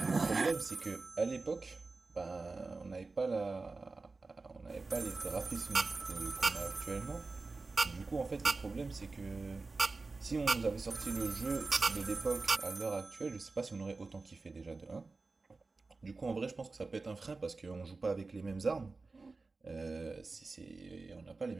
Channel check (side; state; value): left; quieter; 3.8 dB